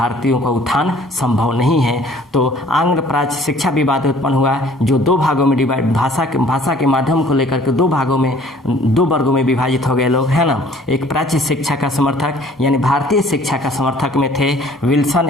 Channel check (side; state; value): both; normal; correlation 0.54